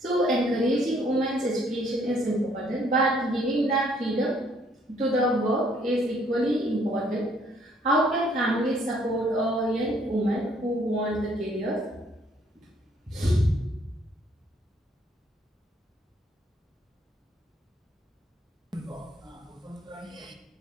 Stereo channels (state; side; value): normal; both; correlation 0.65